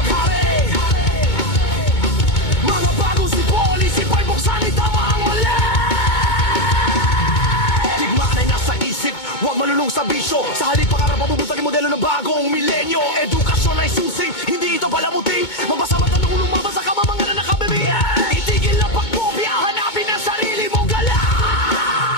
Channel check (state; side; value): late; right; 2.2 ms